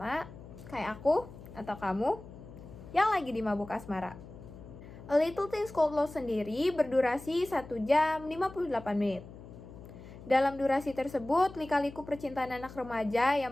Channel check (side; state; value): left; noise; hum, 16 dB below the sound